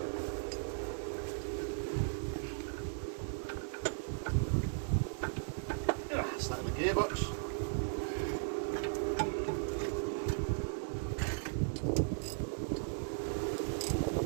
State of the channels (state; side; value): silent; left; digital silence